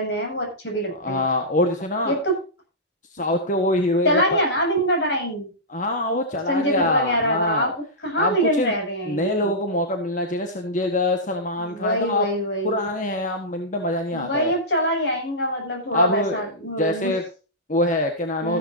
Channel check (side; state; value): both; normal; correlation -0.14